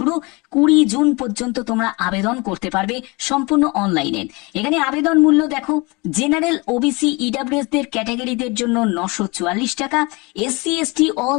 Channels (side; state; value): right; quieter; 26.5 dB